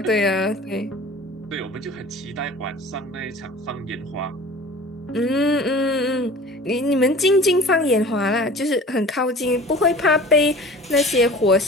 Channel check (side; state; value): both; normal; correlation 0.42